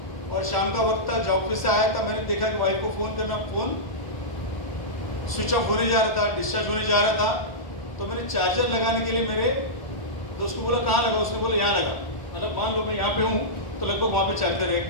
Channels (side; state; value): right; late; 1.0 ms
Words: और शाम का वक्त था, जॉब से आया था। मैंने देखा कि वाइफ को फोन करना, फोन स्विच ऑफ होने जा रहा था, डिस्चार्ज होने जा रहा था। तो मैंने चार्जर लगाने के लिए मेरे दोस्त को बोला कहाँ लगा? उसने बोला यहाँ लगा। मतलब मान लो मैं यहाँ पे हूँ तो लगभग वहाँ पे